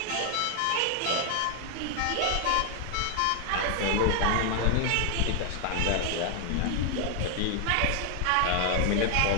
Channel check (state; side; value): different; both; correlation 0.00